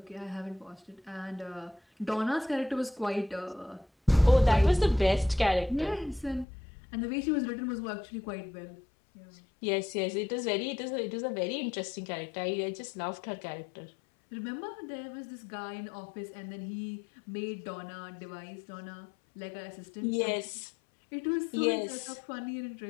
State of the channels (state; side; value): drops out; right; at 6.5 s